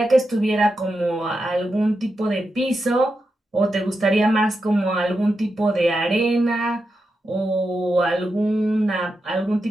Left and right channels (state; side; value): normal; both; correlation 0.88